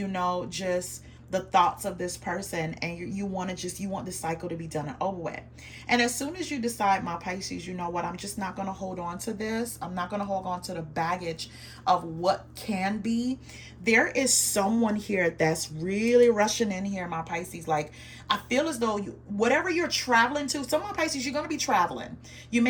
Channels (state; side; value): identical; both; correlation 1.00